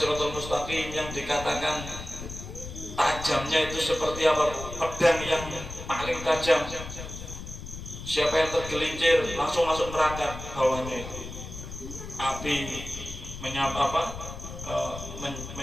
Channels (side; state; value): left; noise; rumble, 10 dB below the sound